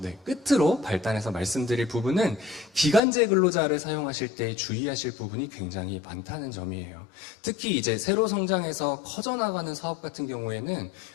네, 끝으로 발단해서 말씀드릴 부분은 기간제 근로자를 사용하실 때 주의하실 부분이 굉장히 많다는 점이에요. 특히 이제 새로 성장해서 커져나가는 사업 같은 경우에는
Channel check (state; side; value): drops out; right; at 3.0 s